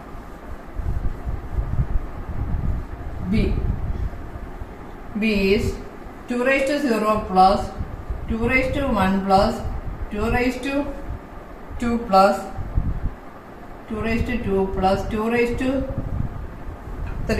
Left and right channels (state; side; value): identical; both; correlation 1.00